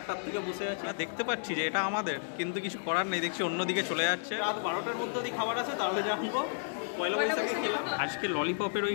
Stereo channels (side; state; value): right; silent; digital silence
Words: থেকে বসে আছে। দেখতে পাচ্ছি যে এটা আমাদের, কিন্তু কিছু করার নেই, দেখছি অন্যদিকে চলে যাচ্ছে। রাত 12টার মধ্যে যদি খাবার আছে তাহলে জানবো। পয়লা বৈশাখে খেলাম। আজকে ললিপপের ওই